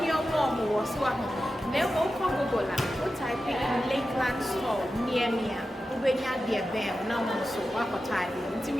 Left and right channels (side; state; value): both; normal; correlation 0.92